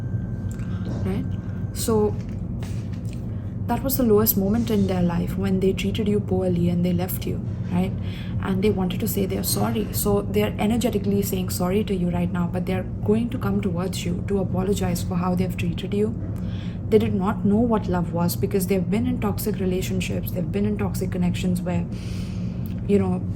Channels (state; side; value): identical; both; correlation 1.00